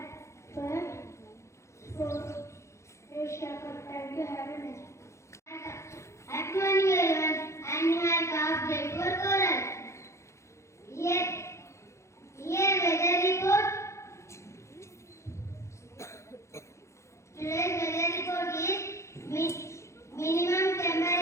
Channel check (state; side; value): late; right; 0.14 ms